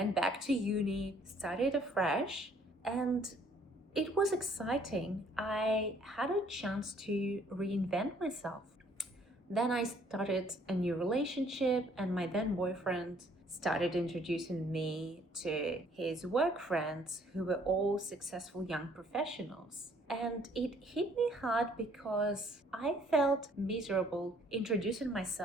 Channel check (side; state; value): both; normal; correlation 0.62